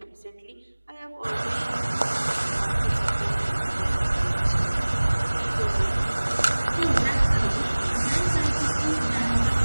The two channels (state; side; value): inverted; both; correlation -1.00